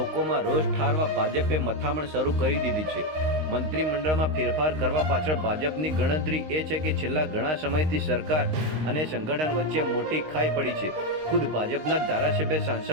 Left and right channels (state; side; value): late; left; 19 ms